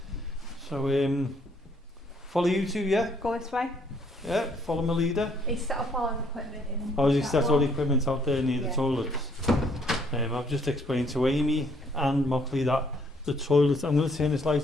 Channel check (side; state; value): both; normal; correlation 0.66